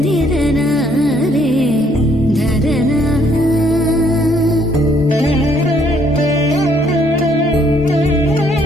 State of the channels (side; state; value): both; normal; correlation 0.67